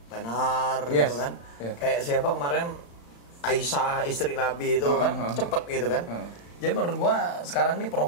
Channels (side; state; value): right; late; 35 ms